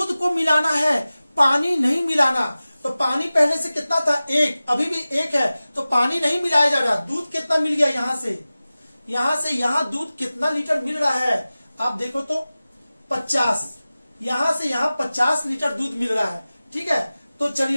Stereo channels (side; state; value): both; inverted; correlation -0.97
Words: को मिलाना है, पानी नहीं मिलाना। तो पानी पहले से कितना था, 1, अभी भी 1 है, तो पानी नहीं मिलाया जा रहा। दूध कितना मिल गया, यहां से यहां दूध कितना लीटर मिल रहा है, आप देखो तो 50, यहां से यहां 50 लीटर दूध मिल रहा है। ठीक है, तो